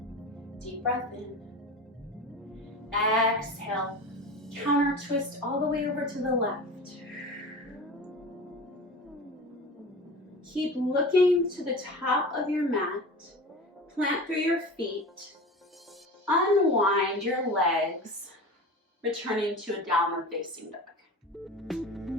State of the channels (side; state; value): both; normal; correlation 0.33